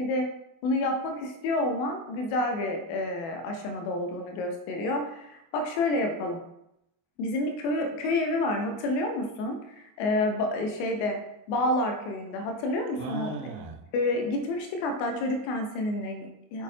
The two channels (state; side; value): late; right; 24 ms